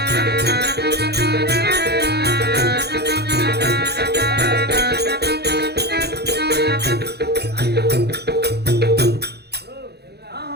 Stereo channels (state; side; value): late; left; 0.48 ms